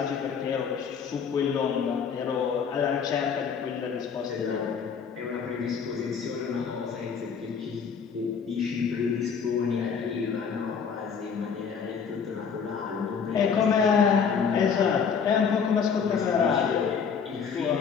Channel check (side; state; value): right; quieter; 6.4 dB